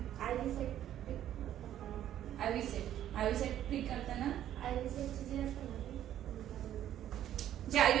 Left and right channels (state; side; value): quieter; left; 11.5 dB